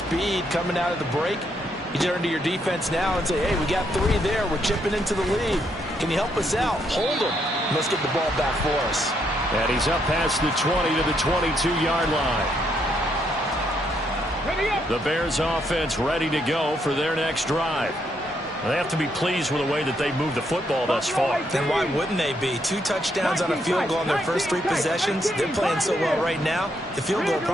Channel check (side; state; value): both; normal; correlation 0.75